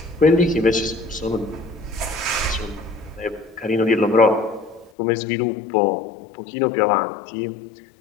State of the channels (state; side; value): drops out; right; at 4.9 s